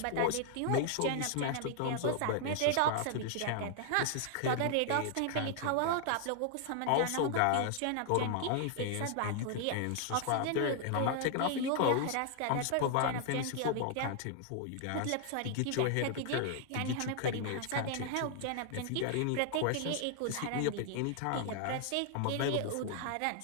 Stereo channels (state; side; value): different; both; correlation 0.00